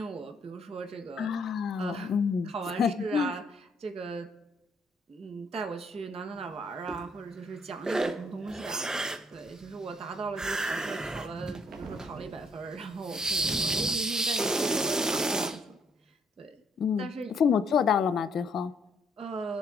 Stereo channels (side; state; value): both; normal; correlation 0.68